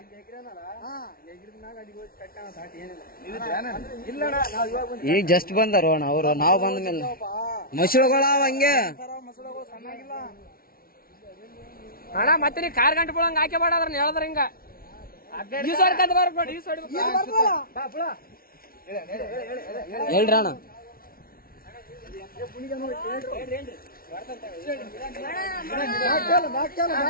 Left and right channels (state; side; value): late; right; 0.43 ms